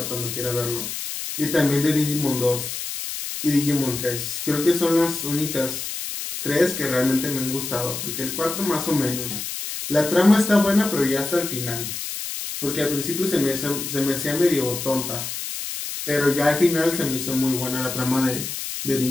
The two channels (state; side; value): noise; left; hiss, 6 dB below the sound